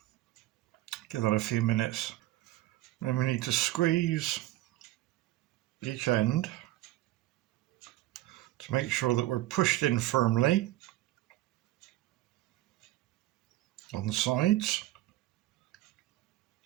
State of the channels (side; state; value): left; quieter; 16.3 dB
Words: give that a few minutes. Then we need to squeeze each end to make sure that we're pushed in firmly on the sides.